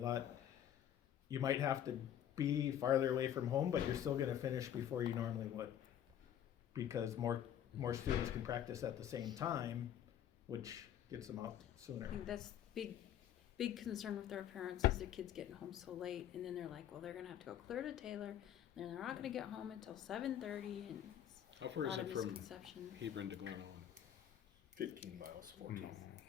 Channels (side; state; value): right; quieter; 10.3 dB